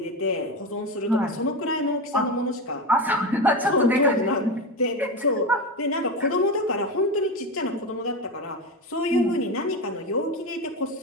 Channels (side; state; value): both; normal; correlation 0.19